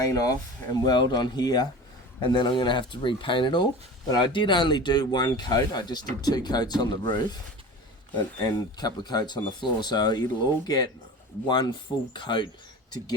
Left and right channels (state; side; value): normal; both; correlation 0.34